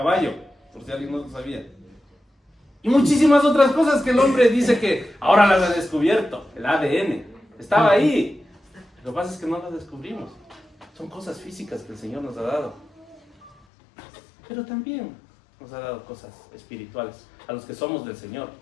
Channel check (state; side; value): drops out; right; at 13.6 s